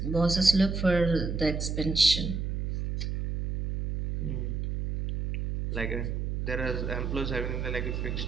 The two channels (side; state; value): right; noise; hum, 2 dB below the sound